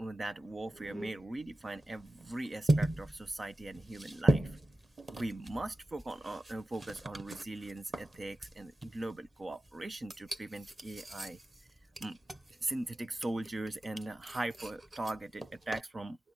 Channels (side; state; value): both; normal; correlation 0.94